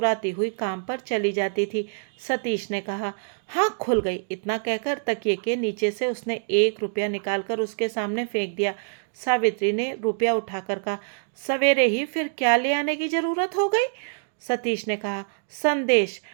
हुई काम पर चली जाती थी। सतीश ने कहा, हाँ खुल गई। इतना कहकर तकिए के नीचे से उसने 1 रुपया निकालकर उसके सामने फेंक दिया। सावित्री ने रुपया उठाकर कहा, सवेरे ही फिर क्या ले आने की जरूरत हो गई? सतीश ने कहा, संदेश,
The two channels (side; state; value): left; silent; digital silence